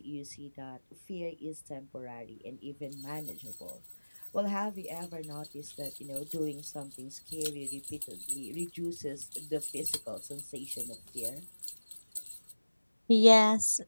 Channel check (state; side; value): inverted; both; correlation -1.00